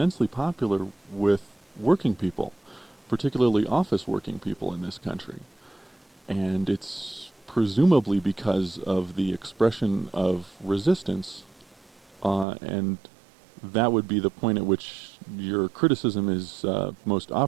popular with working people, particularly office working people in this country, and it's presumably because of the expression of resistance, and that would be the point at which your criticism is most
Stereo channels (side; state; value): left; drops out; at 12.5 s